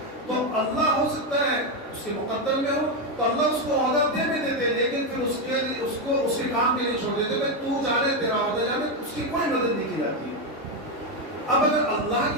تو اللہ ہو سکتا ہے اس کے مقدر میں ہو تو اللہ اس کو عہدہ دے بھی دیتے، لیکن پھر اس کو اس کے کام کے لیے چھوڑ دیتے، بھائی تو جانے تیرا عہدہ جانے، اس کی کوئی مدد نہیں کی جاتی. اب اگر اللہ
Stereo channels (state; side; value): normal; both; correlation 0.07